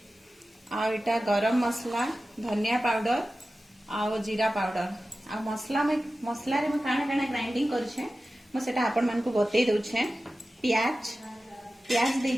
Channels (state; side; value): normal; both; correlation 0.95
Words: आ एटा गरम मसला धनिया पाउडर आ जीरा पाउडर आ मसला रे मैं काना काना ग्राइंडिंग करछे मैं सेटा आपण मान को बतई दउछे। प्याज दे